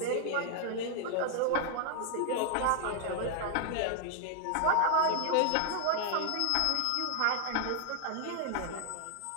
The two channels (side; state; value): both; different; correlation 0.00